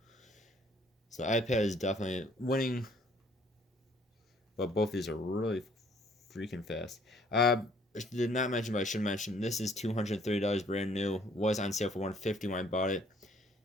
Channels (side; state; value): both; normal; correlation 0.61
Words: So the iPad is definitely winning, but both these are really freaking fast. Did not mention, but I should mention, this is $230 brand new. Was on sale for $150 when I bought it.